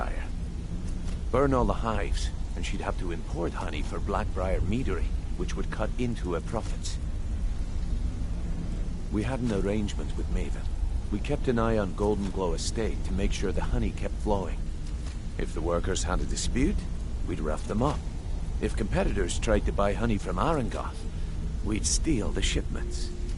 Burn all the hives, and she'd have to import honey for Blackbriar meadery, which would cut into her profits. We had an arrangement with Maven. We kept an eye on Golden Glow Estate to make sure the honey kept flowing. If the workers had a dispute, we'd rough them up. If competitors tried to buy honey from Arengoth, we'd steal the shipments.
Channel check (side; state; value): both; identical; correlation 1.00